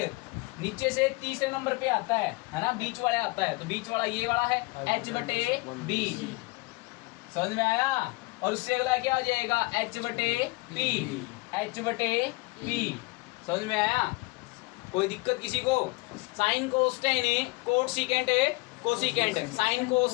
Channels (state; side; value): quieter; right; 24.8 dB